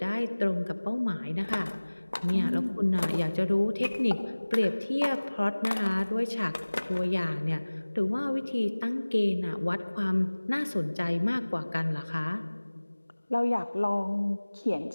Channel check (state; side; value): inverted; both; correlation -1.00